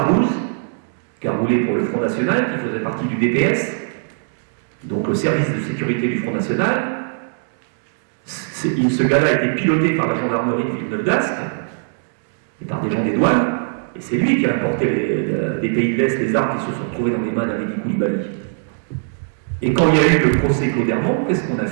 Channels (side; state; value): left; silent; digital silence